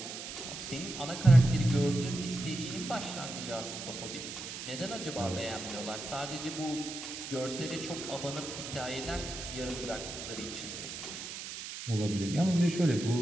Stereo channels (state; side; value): noise; right; hiss, 8 dB below the sound